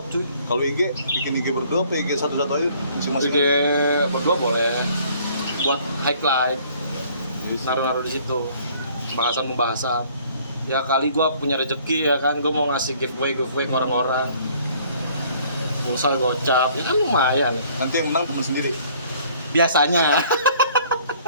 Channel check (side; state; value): both; inverted; correlation -0.58